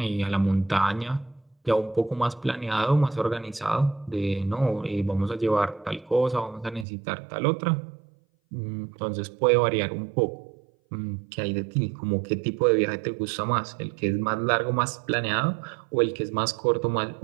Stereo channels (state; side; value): drops out; left; at 6.9 s